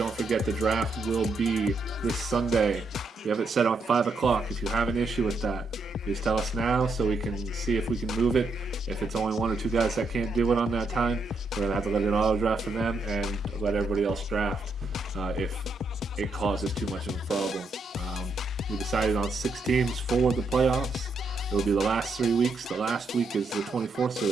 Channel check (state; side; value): quieter; left; 3.2 dB